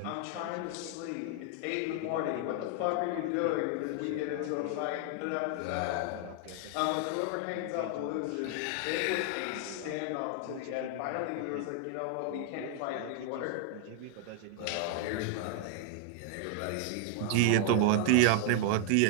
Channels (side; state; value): both; different; correlation 0.00